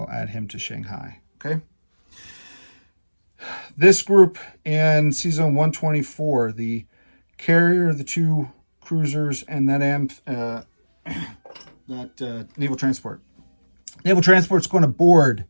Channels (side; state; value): both; inverted; correlation -1.00